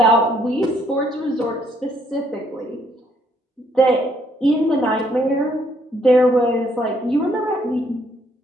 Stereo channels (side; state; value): both; normal; correlation 0.69